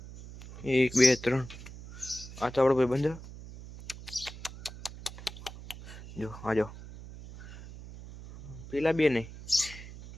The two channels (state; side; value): noise; right; hum, 15 dB below the sound